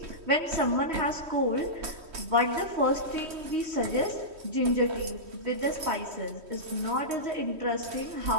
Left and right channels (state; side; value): late; left; 3.1 ms